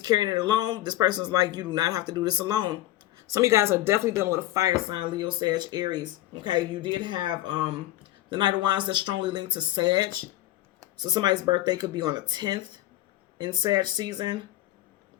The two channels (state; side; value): quieter; right; 15.2 dB